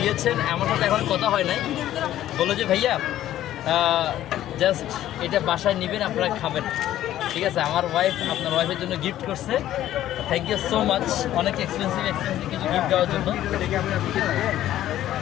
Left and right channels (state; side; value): quieter; right; 12.9 dB